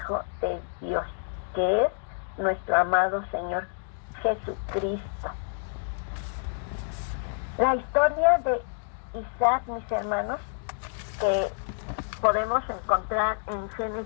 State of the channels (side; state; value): right; silent; digital silence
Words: de Dios, que es nuestro amado Señor Jesucristo. La historia de Isaac, mis hermanos, que podemos encontrar en